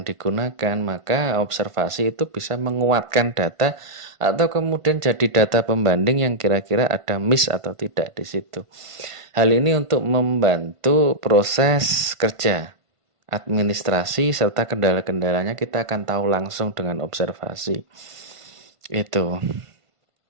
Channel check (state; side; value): late; left; 1.5 ms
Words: digunakan. Maka observasi itu bisa menguatkan data atau kemudian jadi data pembanding yang kira-kira ada miss atau tidak di situ. Hal ini untuk membantu proses kerja administrasi serta kendala-kendalanya kita akan tahu langsung dengan observasi. Itu.